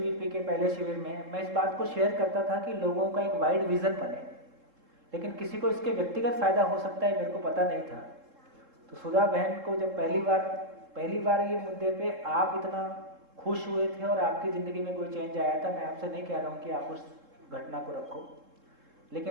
के पहले शिविर में मैं इस बात को शेयर करता था कि लोगों का एक वाइड विज़न बने, लेकिन किसी को इसके व्यक्तिगत फ़ायदा हो सकता है मेरे को पता नहीं था। तो सुधा बहन को जब पहली बार ये मुद्दे पे आप इतना खुश हुए थे और आपकी ज़िंदगी में कोई चेंज आया था, मैं आपसे नहीं कह रहा हूँ कि आप उस घटना को रखो,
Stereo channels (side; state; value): left; late; 3.7 ms